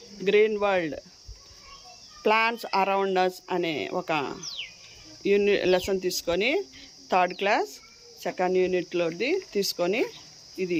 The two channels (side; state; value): both; identical; correlation 1.00